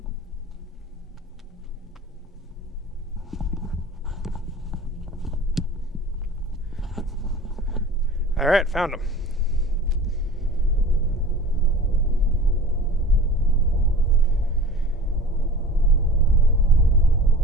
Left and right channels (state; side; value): normal; both; correlation 0.40